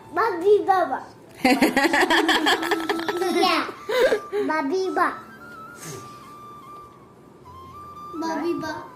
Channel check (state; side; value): identical; both; correlation 1.00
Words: বাবি বাবা বাবি বা বাবি বা